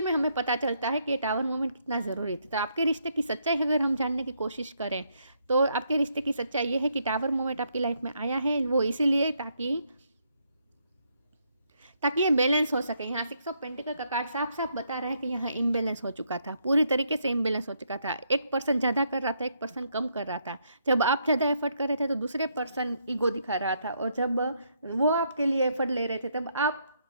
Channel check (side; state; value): both; inverted; correlation -0.74